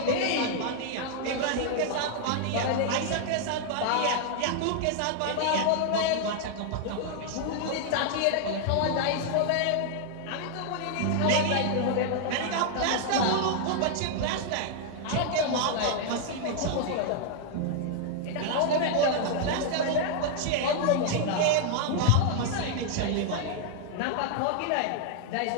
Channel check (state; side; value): different; both; correlation 0.00